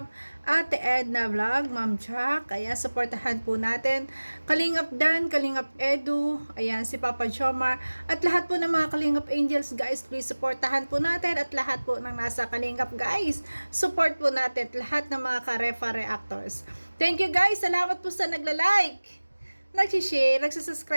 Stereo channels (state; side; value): inverted; both; correlation -1.00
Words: Ate Edna Vlog, Ma'am Jack. Ayan, supportahan po natin. Kalingap Dan, Kalingap Edu, ayan, si Papa Jomar, at lahat po ng mga Kalingap Angels, guys, please supportahan po natin, at lahat po ng nasa Kalingap, guys, support po natin, lahat ng mga Karefa reactors. Thank you guys, salamat po sa nagla-like, nag-share,